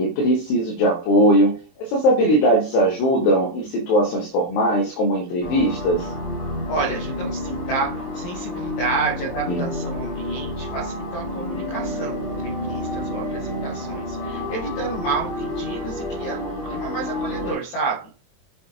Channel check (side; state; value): right; late; 23 ms